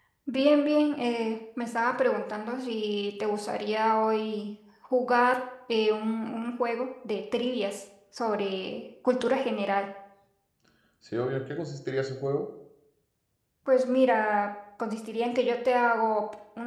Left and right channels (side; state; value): both; identical; correlation 1.00